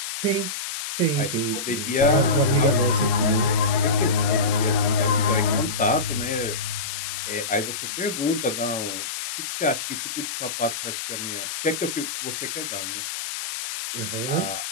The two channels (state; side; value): noise; left; hiss, 5 dB below the sound